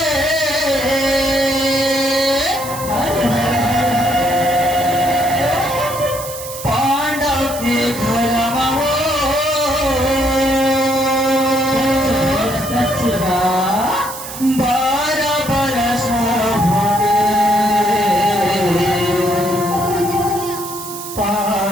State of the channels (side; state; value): right; noise; hiss, 10 dB below the sound